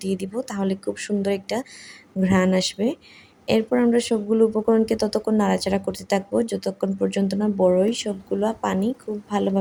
দিয়ে দিব, তাহলে খুব সুন্দর একটা ঘ্রাণ আসবে। এরপর আমরা সবগুলো উপকরণকে ততক্ষণ নাড়াচাড়া করতে থাকবো যতক্ষণ পর্যন্ত না বড়ই সবগুলো পানি খুব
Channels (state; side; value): identical; both; correlation 1.00